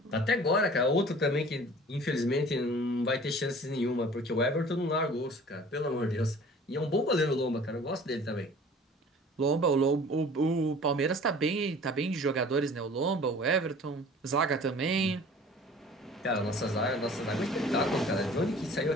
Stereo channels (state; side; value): normal; both; correlation 0.46